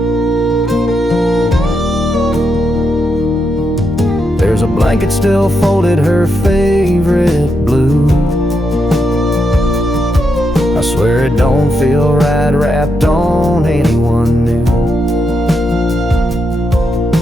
There's a blanket still folded, her favorite blue. I swear it don't feel right wrapped on anyone new.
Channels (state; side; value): normal; both; correlation 0.83